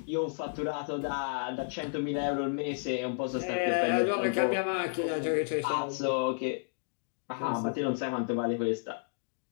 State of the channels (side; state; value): right; silent; digital silence